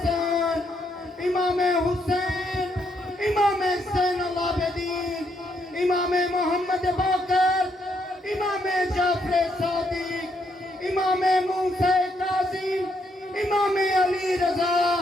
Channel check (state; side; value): normal; both; correlation 0.75